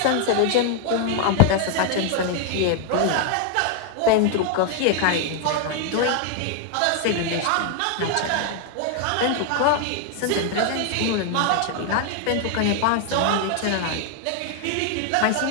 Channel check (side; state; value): both; different; correlation 0.00